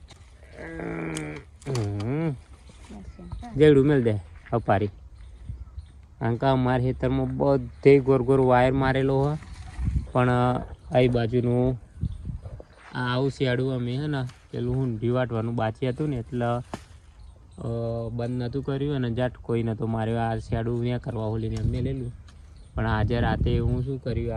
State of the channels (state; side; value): identical; both; correlation 1.00